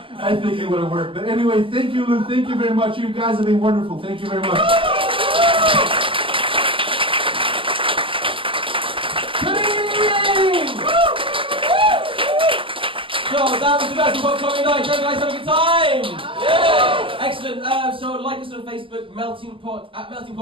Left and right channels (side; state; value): left; late; 0.25 ms